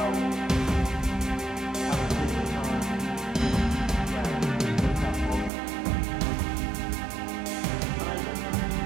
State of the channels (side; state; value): left; drops out; at 5.5 s